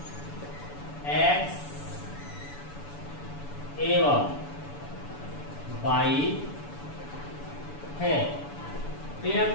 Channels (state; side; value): late; right; 7.0 ms